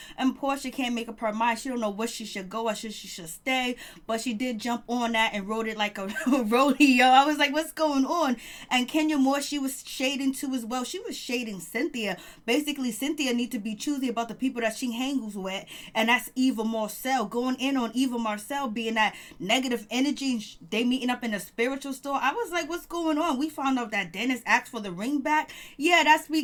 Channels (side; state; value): both; identical; correlation 1.00